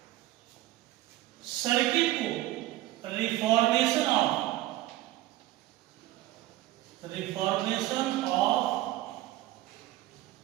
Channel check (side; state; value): left; quieter; 15.8 dB